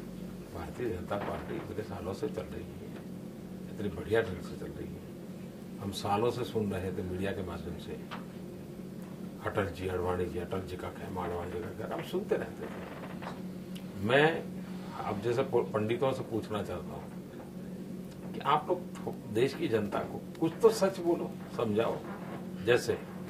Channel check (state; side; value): identical; both; correlation 1.00